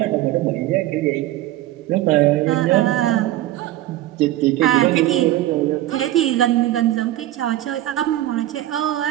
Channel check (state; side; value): quieter; left; 14.6 dB